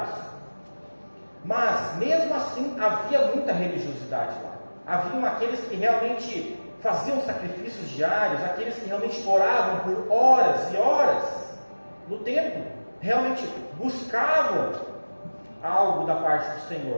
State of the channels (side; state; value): both; inverted; correlation -1.00